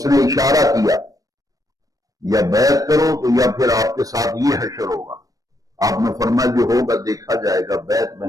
نے اشارہ کیا، یا بیعت کرو تو یا پھر آپ کے ساتھ یہ حشر ہوگا۔ آپ نے فرمایا جو ہوگا دیکھا جائے گا، بیعت میں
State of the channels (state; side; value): late; left; 0.17 ms